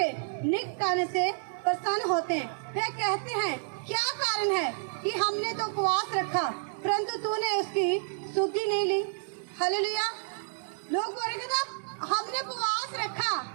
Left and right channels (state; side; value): silent; left; 58 dB below the other